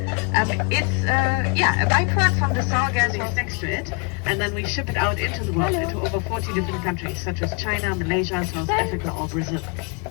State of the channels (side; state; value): right; quieter; 34.5 dB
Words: It's a byproduct from the sour gases next to it, and then we ship it out into the world, into over 40 different countries, such as China, Malaysia, South Africa, or Brazil.